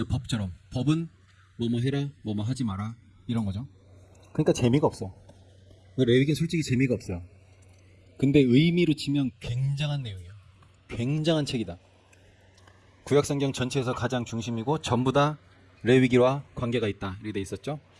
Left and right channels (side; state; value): both; identical; correlation 1.00